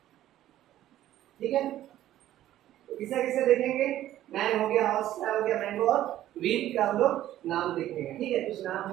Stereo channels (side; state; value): left; quieter; 13.2 dB